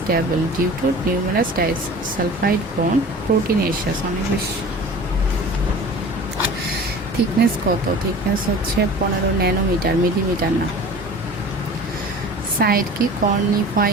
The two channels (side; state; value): both; normal; correlation 0.41